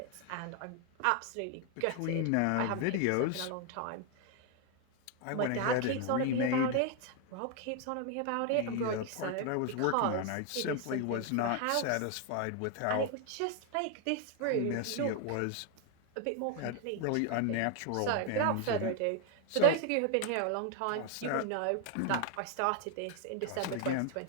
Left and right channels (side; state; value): both; different; correlation 0.01